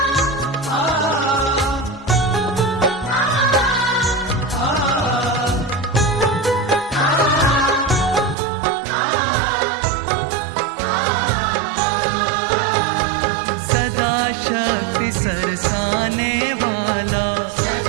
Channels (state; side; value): drops out; left; at 8.3 s